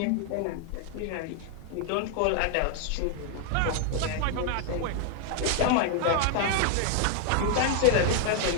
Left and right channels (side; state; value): both; different; correlation 0.00